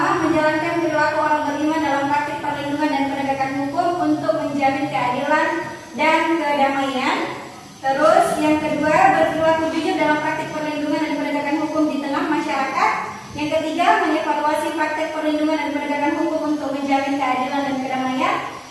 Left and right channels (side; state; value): both; identical; correlation 1.00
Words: menjalankan perilaku orang beriman dalam praktik perlindungan dan penegakan hukum untuk menjamin keadilan dan kedamaian. Terus yang kedua, berperilaku jujur dalam praktik perlindungan dan penegakan hukum di tengah masyarakat. Yang ketiga, mengevaluasi praktik perlindungan dan penegakan hukum untuk menjamin keadilan dan kedamaian.